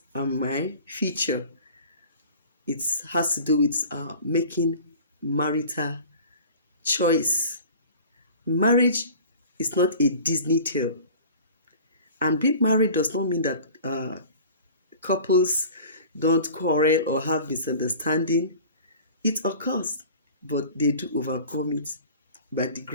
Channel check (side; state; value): both; inverted; correlation -0.43